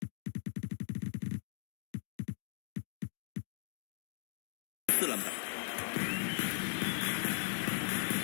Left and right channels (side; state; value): right; silent; digital silence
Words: 4篮板。